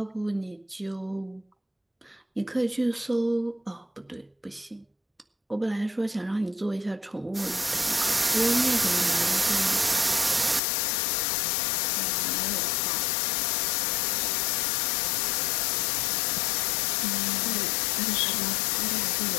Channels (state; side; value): drops out; right; at 10.6 s